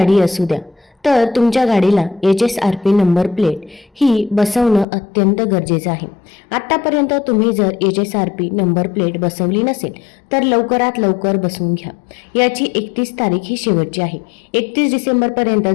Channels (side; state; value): right; drops out; at 4.9 s